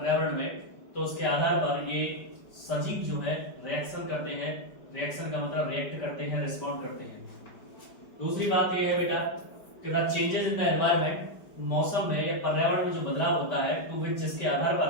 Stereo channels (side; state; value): right; late; 5.0 ms